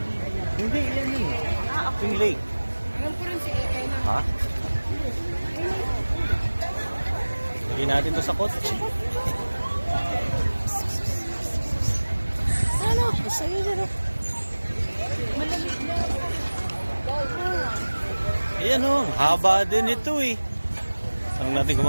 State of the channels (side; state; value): both; inverted; correlation -1.00